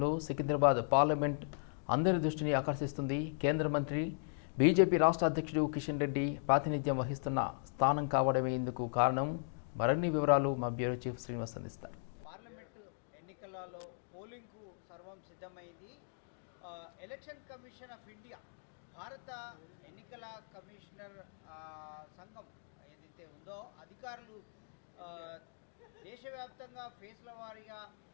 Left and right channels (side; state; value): right; silent; digital silence